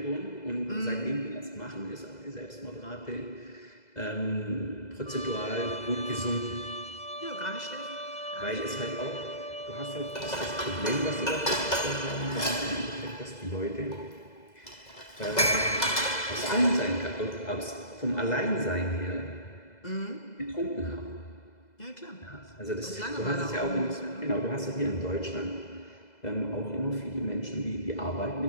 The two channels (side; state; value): right; late; 2.0 ms